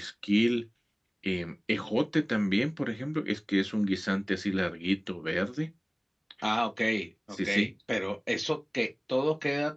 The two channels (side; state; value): both; identical; correlation 1.00